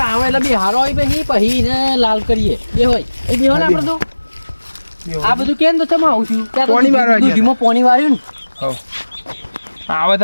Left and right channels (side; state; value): both; inverted; correlation -1.00